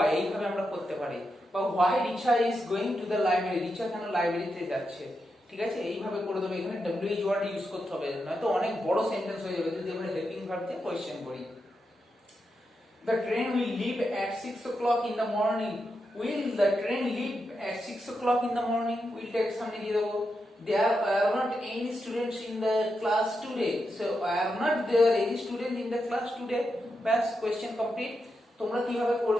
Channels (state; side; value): normal; both; correlation 0.86